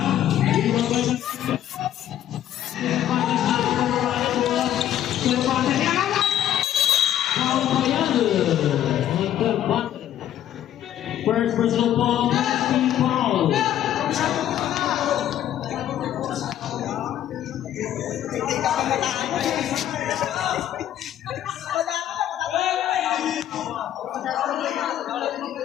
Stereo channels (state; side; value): quieter; right; 11.5 dB